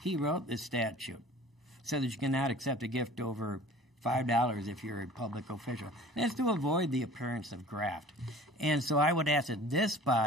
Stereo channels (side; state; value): both; normal; correlation 0.45